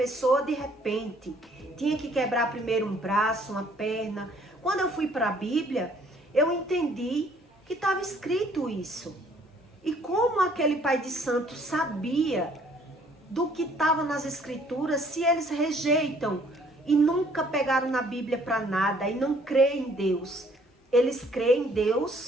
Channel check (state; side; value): normal; both; correlation 0.61